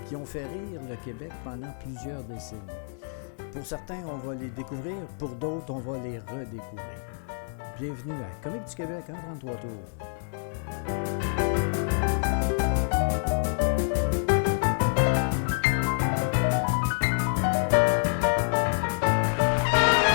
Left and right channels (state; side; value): silent; right; 60 dB below the other